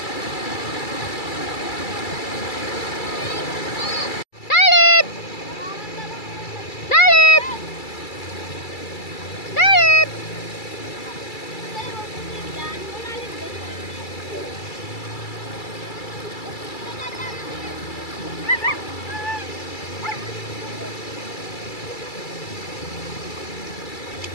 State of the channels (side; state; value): right; late; 2.3 ms